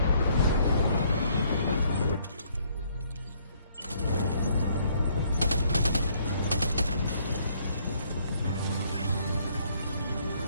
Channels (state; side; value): inverted; both; correlation -0.66